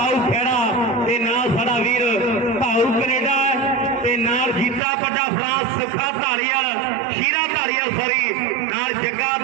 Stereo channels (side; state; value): left; drops out; at 4.8 s